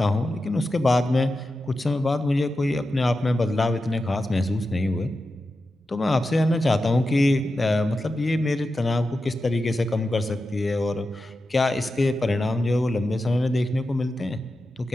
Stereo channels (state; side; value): normal; both; correlation 0.91